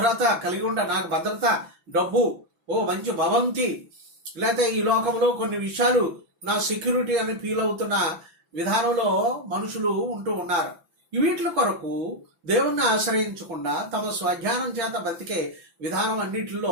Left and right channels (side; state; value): left; late; 5.9 ms